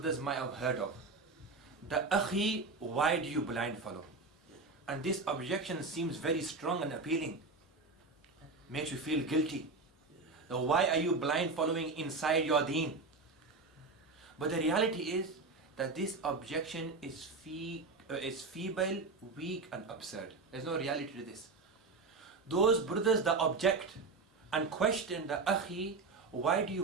might have heard of. The Akhi, why do you blind follow? And this objection seems very strong and appealing. Makes you feel guilty. Now, why are you blind following inside your deen? But the reality is that this objection is feeble, weak and absurd. There's no reality to this. Those brothers that object and question the Akhi, why do you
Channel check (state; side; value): quieter; left; 3.8 dB